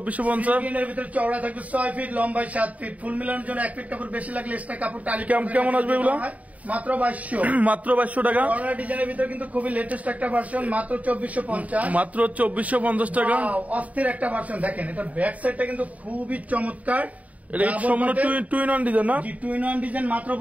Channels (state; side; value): late; left; 0.070 ms